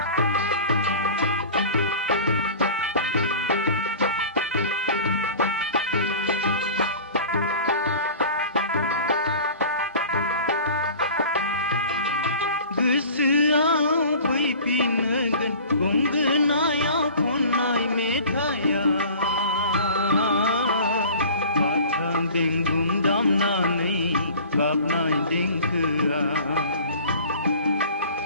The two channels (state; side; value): inverted; both; correlation -0.42